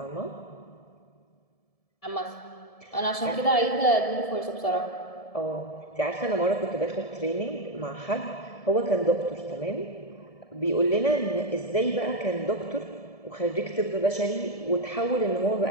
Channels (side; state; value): right; late; 1.7 ms